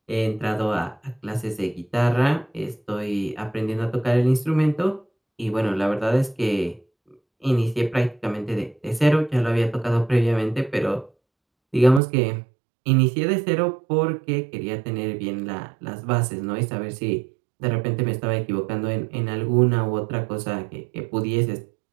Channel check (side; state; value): left; drops out; at 12.0 s